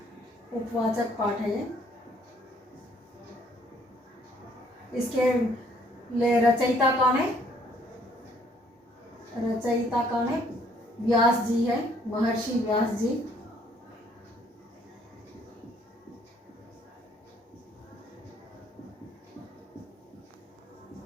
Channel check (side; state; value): both; normal; correlation 0.64